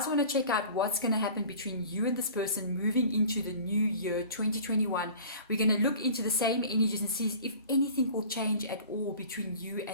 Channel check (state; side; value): inverted; both; correlation -0.43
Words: want to check out what's going to happen between you and this person moving into the new year 2021, we're going to look into the same energies and see if anything will change at all between you